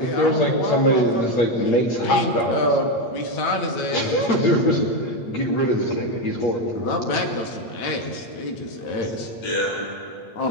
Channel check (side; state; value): right; late; 8.5 ms